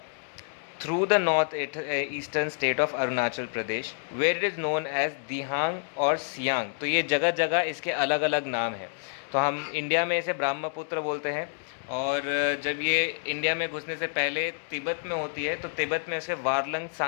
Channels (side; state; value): right; silent; digital silence